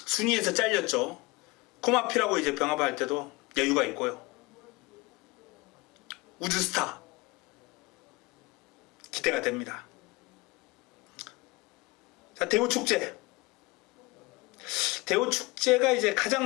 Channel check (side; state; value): right; quieter; 24.0 dB